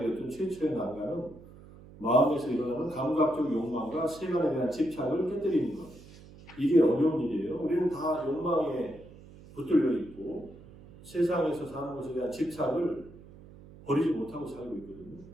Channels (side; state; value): right; noise; hum, 20 dB below the sound